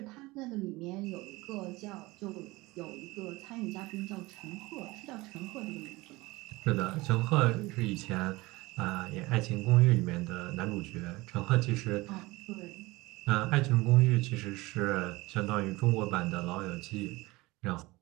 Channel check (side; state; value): left; quieter; 21.4 dB